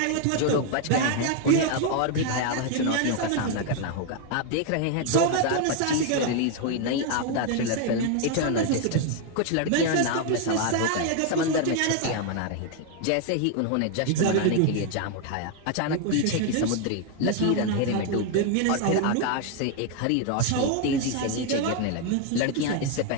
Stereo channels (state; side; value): different; both; correlation 0.00